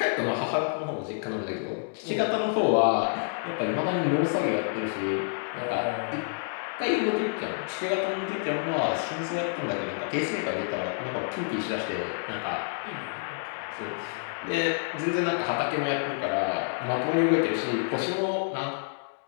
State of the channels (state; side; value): silent; right; digital silence